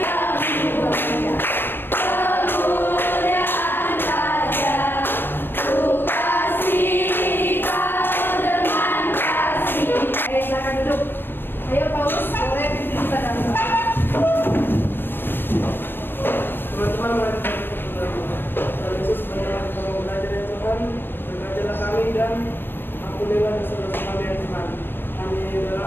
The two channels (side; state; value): right; late; 0.097 ms